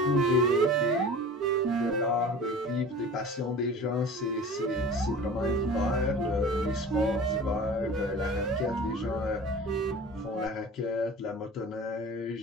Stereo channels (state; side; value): normal; both; correlation 0.40